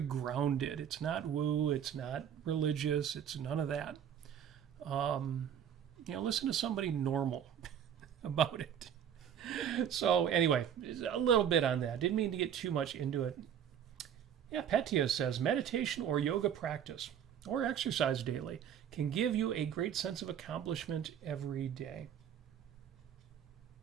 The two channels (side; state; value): left; quieter; 9.0 dB